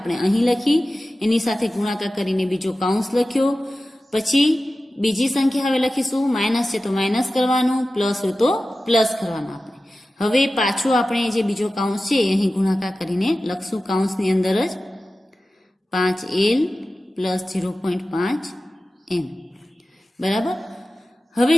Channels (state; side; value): normal; both; correlation 0.95